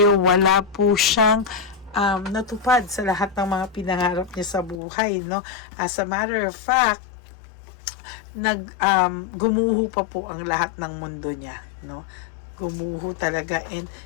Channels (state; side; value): drops out; right; at 4.8 s